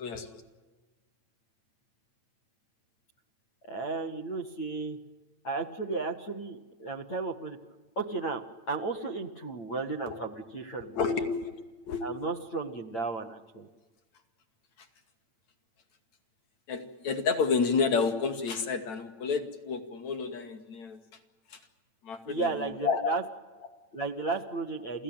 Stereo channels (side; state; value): right; late; 9.0 ms